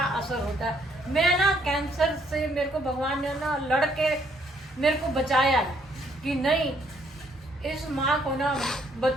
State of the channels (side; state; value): both; normal; correlation 0.68